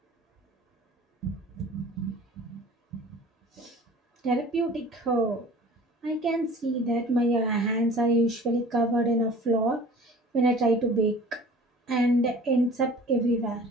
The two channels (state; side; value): normal; both; correlation 0.45